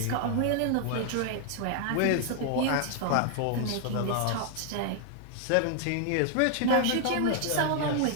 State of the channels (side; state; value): both; different; correlation 0.00